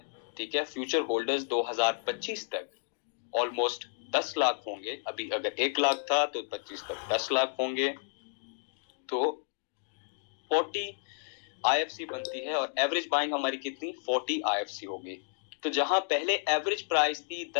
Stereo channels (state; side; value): silent; right; digital silence